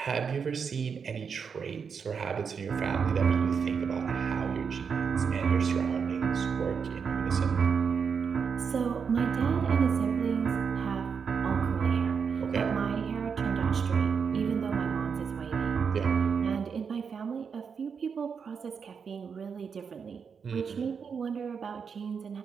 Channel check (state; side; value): quieter; left; 6.2 dB